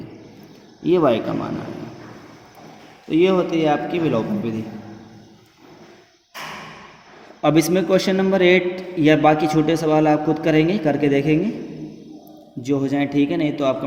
ये y का मान आएगा। तो ये होती है आपकी विलोपन विधि। अब इसमें क्वेश्चन नंबर 8 या बाकी छोटे सवाल आप खुद करेंगे, करके देखेंगे, जो हो जाए ठीक है, नहीं तो आप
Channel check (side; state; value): both; identical; correlation 1.00